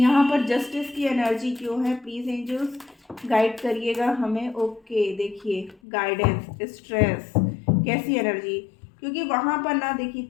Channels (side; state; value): right; drops out; at 5.8 s